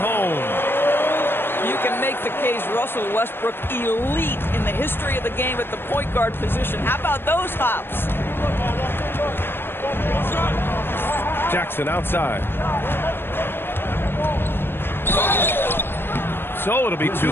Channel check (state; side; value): late; right; 0.10 ms